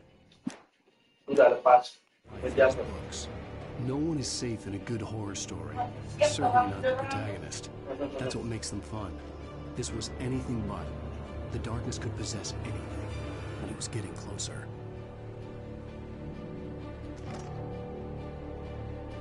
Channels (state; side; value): identical; both; correlation 1.00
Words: Books. No one is safe in a good horror story. Certainly not the protagonist. That's what makes them fun. This was anything but. The darkness could possess anything, and it was getting closer.